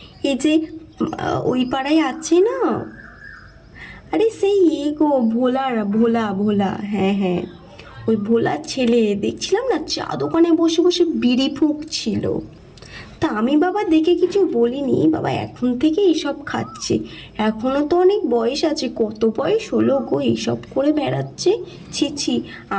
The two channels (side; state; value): both; identical; correlation 1.00